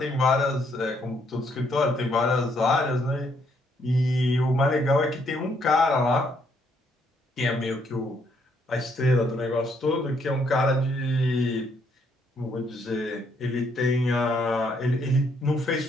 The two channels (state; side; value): normal; both; correlation 0.71